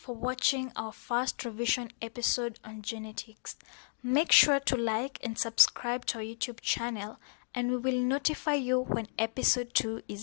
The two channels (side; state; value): right; silent; digital silence